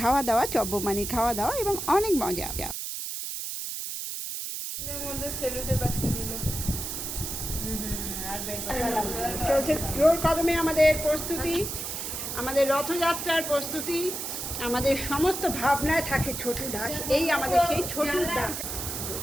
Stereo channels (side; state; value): right; noise; hiss, 5 dB below the sound